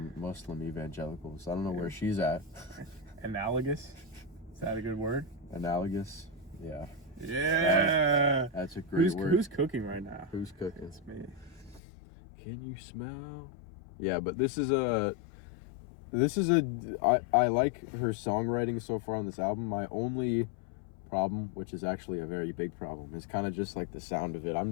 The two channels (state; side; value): drops out; right; at 11.8 s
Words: Muslim evangelicals. I don't know where she's at. Analogous? Is that a good word? Analogous. Yeah. Yeah. That's a great word. Who's cooking right now? Who's cooking? It's me. Can you smell? Yeah, but this is a I like her songwriting so far on this album. My only problem, which is actually a very big problem, is kind of just like the sound of it. I'm